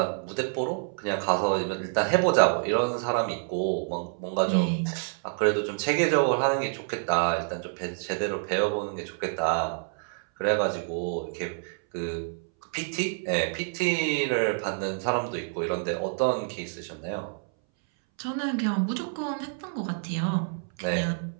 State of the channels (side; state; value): left; silent; 59 dB below the other